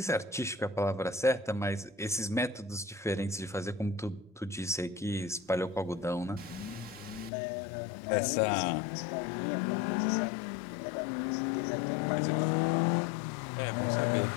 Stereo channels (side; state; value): right; drops out; at 7.3 s